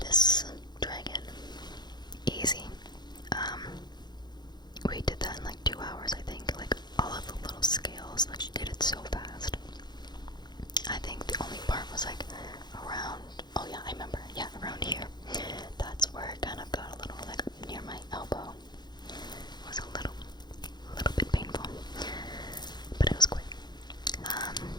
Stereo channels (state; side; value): late; right; 0.21 ms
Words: dragon, easy. We did that in like 2 hours, I think. Like all of the little scales, like she did it so fast. I think the only part was like around, oh yeah, I remember, yeah, around here. That's where it kind of got a little like near my